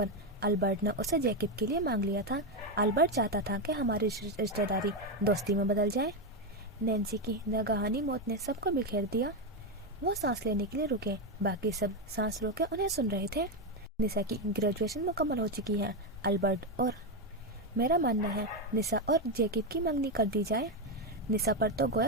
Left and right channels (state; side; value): normal; both; correlation 0.07